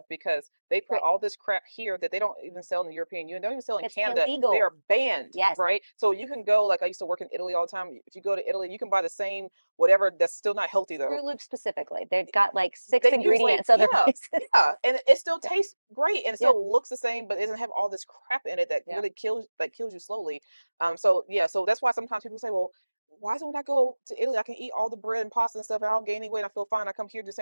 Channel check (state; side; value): inverted; both; correlation -1.00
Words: because they put Right. all this crap here that they don't even sell in the European Union. They don't even sell in It's Canada. They illegal. are banned, Yes. right? So you can go, like I used to work in Italy all the time. If you go to Italy, you can buy the same whatever that's still not healthy though. Fruit Loops specifically. They've got like six They use like, ingredients other yeah, places. yeah, and it still Yeah. tastes great and it Yeah. still looks the same, but it doesn't have all this crap in it that Yeah. really kills you slowly. So yeah, so that's why sometimes people say, well, why don't I go to Italy? I can eat all the bread and pasta and stuff, and I don't gain any weight. I feel fine. I come here, do the